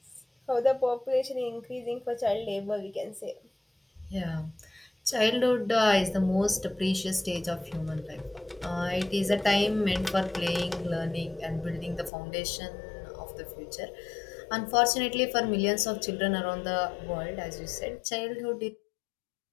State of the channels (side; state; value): right; drops out; at 12.1 s